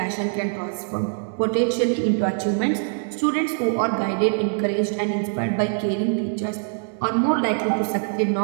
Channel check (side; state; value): left; silent; digital silence